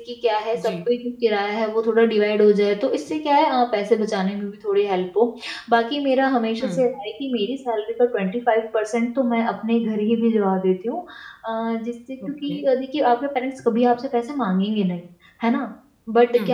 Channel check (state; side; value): identical; both; correlation 1.00